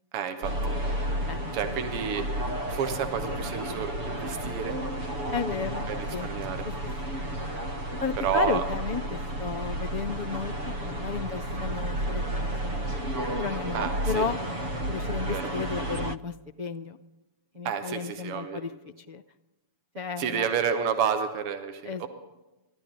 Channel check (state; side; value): late; left; 7.0 ms